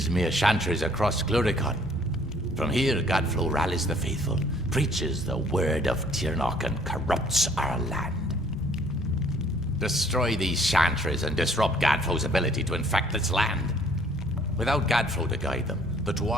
chantries across Cluricon. From here, Gadflow rallies the faithful, preaches the word of Tirnoch, and corrupts our land. Destroy these chantries and disrupt Gadflow's ability to infect this land. Without Gadflow to guide them, the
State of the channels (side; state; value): both; normal; correlation 0.59